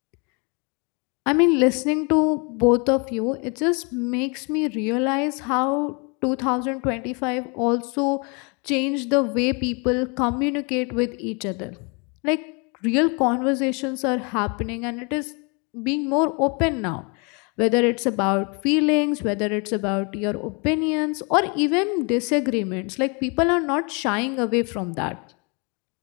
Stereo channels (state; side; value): quieter; right; 32.6 dB